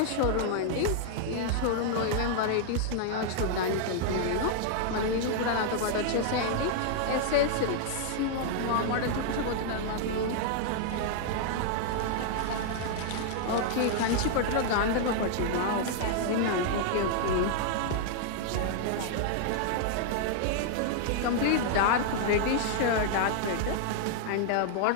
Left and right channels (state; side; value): different; both; correlation 0.00